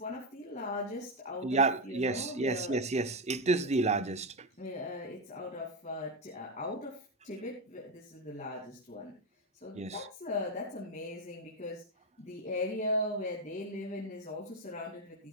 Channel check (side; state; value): both; normal; correlation 0.09